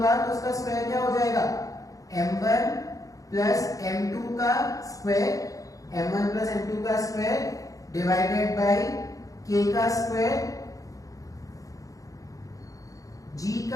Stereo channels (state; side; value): late; right; 0.17 ms